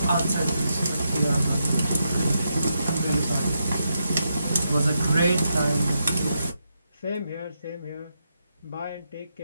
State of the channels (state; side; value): inverted; both; correlation -0.83